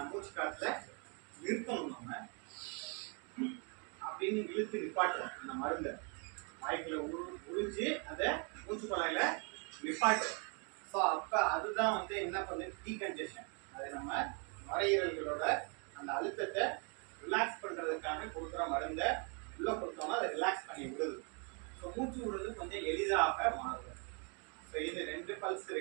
மூச்சு காற்றுல நிறுத்தணும். நம்ம அப்படின்னு இழுத்து நிப்பாட்டுறோம் அந்த மருந்தை வாய்க்குள்ள உறிஞ்சு அதை மூச்சு குழாயில நிப்பாட்டுறோம். ஸோ அப்போ அதுதான் வந்து என்ன பண்ணுது, டீகன்ஜெஷன். அது நம்ம நுரையீரல்களோட அந்த அழுத்தத்தை ரிலாக்ஸ் பண்ணுறதுக்காக கொடுக்குற மருந்தை உள்ளே கொடுத்தோம்னா அதை ரிலாக்ஸ் பண்ணி விடுது. ஸோ மூச்சு விடுறது கொஞ்சம் எளிதாக மாறுது. ஸோ இது 2 பல்ஸ்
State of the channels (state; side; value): quieter; left; 36.2 dB